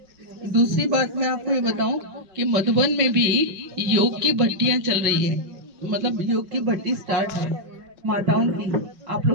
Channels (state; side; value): late; left; 5.3 ms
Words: दूसरी बात मैं आपको ये बताऊं कि मधुबन में भी योग की भट्टियां चल रही है, मतलब योग की भट्टी स्टार्ट है माताओं की। आप